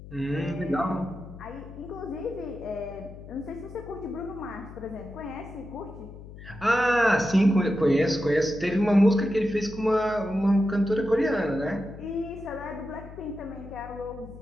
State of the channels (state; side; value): noise; left; hum, 15 dB below the sound